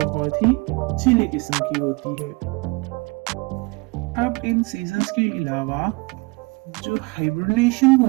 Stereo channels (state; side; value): quieter; left; 26.8 dB